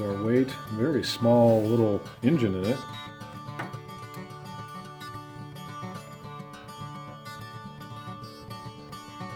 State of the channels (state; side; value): identical; both; correlation 1.00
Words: weight. Very small little engine in it.